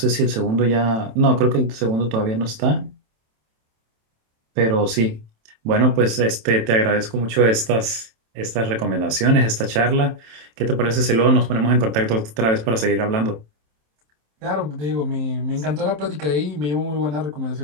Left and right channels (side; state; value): left; late; 27 ms